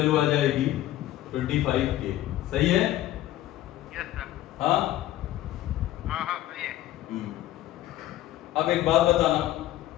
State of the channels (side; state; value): right; quieter; 14.3 dB